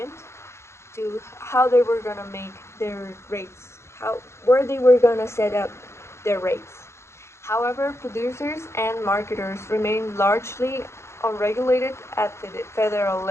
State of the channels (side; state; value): right; late; 0.13 ms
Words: to how they were gonna make their rates, how where they were gonna set up their rates. However, producers and marketers remain largely unregulated at the federal